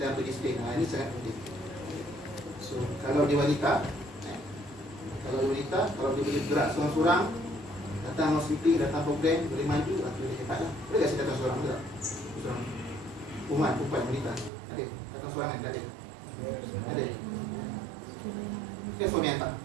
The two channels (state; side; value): drops out; left; at 14.5 s